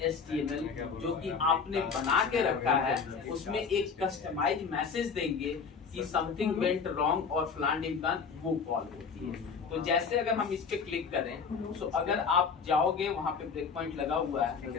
HTML जो कि आपने बना के रखा है, उसमें एक कस्टमाइज मैसेज देंगे कि समथिंग वेंट रॉन्ग और फलान ढिमकान, वो कॉल होती है। तो जैसे अगर हम इस पे क्लिक करें, तो अगर आप जाओगे वहां पे ब्रेक पॉइंट लगा हुआ है,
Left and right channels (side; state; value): right; quieter; 5.7 dB